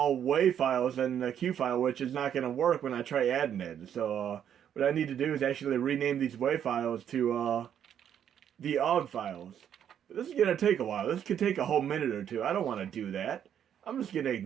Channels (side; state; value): left; quieter; 9.3 dB